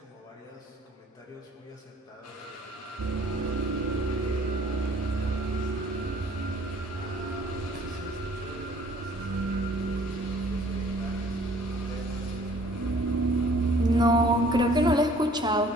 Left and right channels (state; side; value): normal; both; correlation 0.56